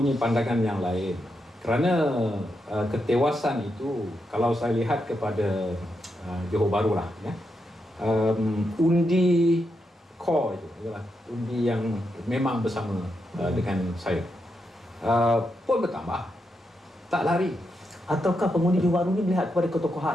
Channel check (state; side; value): normal; both; correlation 0.84